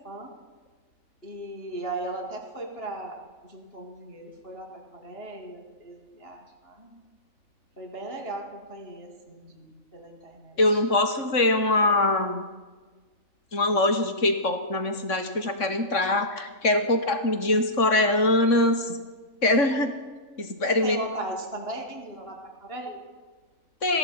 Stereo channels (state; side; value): late; right; 3.6 ms